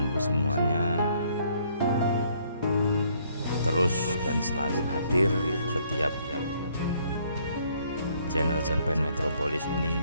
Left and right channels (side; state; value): both; inverted; correlation -0.65